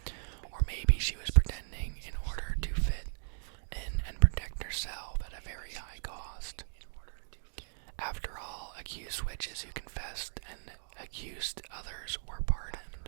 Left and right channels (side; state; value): left; silent; digital silence